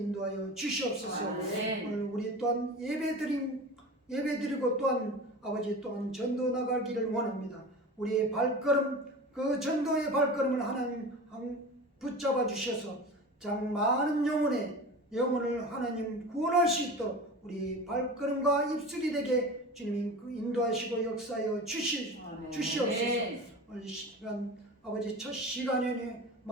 주시옵소서. 오늘 우리 또한 예배드리고 또한 아버지 또한 전도 나가기를 원합니다. 우리의 발걸음 그 전도의 발걸음을 하나님 붙잡아 주셔서 장 많은 영혼을 하나님 구원할 수 있도록 우리 발걸음과 입술이 되게 주님이 인도하시고 역사하여 주시옵소서. 오늘 시간 아버지 첫 시간에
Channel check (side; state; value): both; normal; correlation 0.33